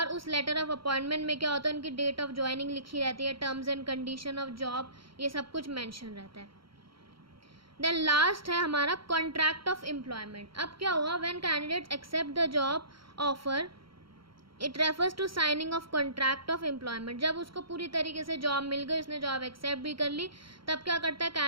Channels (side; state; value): left; late; 0.74 ms